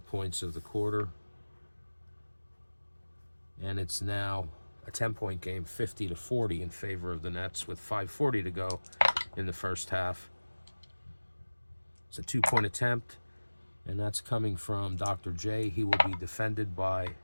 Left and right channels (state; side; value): inverted; both; correlation -1.00